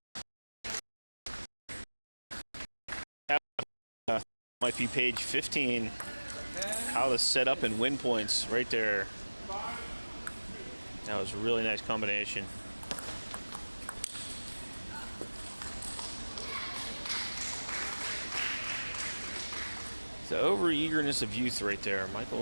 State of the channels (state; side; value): inverted; both; correlation -1.00